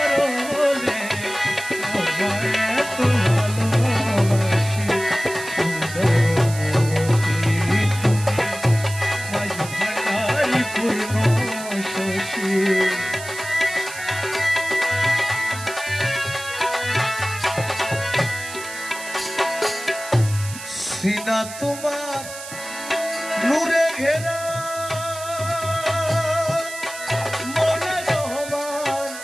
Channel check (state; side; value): noise; right; hiss, 12 dB below the sound